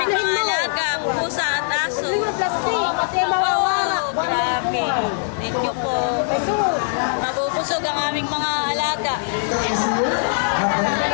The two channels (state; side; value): silent; right; digital silence